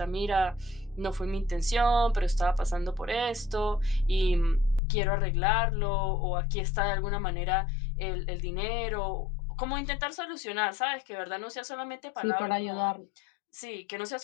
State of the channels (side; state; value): right; drops out; at 4.8 s